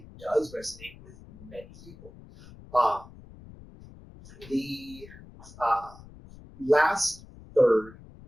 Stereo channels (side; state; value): left; noise; rumble, 20 dB below the sound